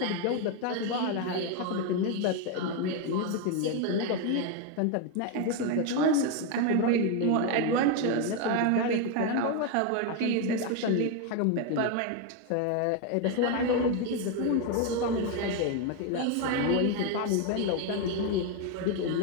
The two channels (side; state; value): both; different; correlation 0.02